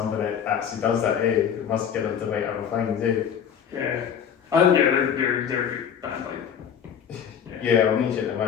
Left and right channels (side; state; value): right; quieter; 8.1 dB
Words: that actually does that. It must get them to write other things. Yeah. They're a good band. Yeah, I'll need you to